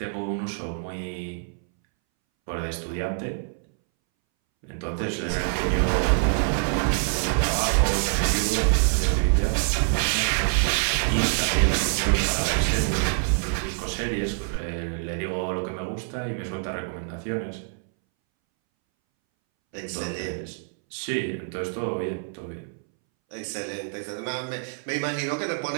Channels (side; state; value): left; silent; 61 dB below the other